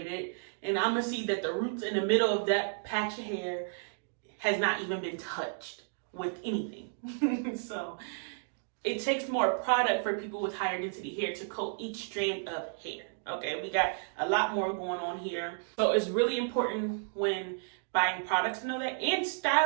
it, and I'm gonna see that the roots in the middle of that patch of hair has not even been touched with anything. So it takes more product for people with higher density hair to coat each strand of hair. Okay, we got a lot more going on here. So it's really important when buying products to know that, and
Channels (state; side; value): silent; left; digital silence